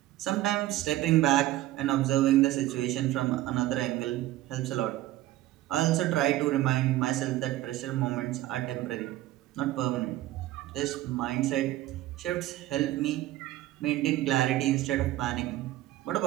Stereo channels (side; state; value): left; quieter; 15.4 dB